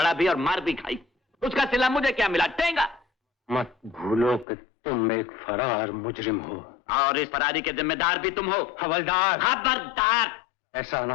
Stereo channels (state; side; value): drops out; right; at 4.5 s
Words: भी और मार भी खाई। उसका सिला मुझे क्या मिला? टेंगा। मत भूलो कि तुम एक फरार मुजरिम हो और इस फरारी के जिम्मेदार भी तुम हो। हवलदार। खबरदार! ऐसा ना